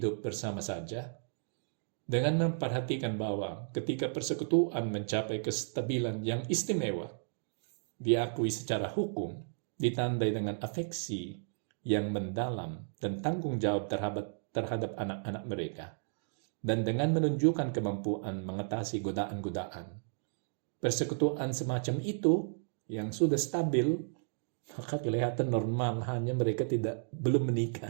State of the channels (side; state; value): left; silent; digital silence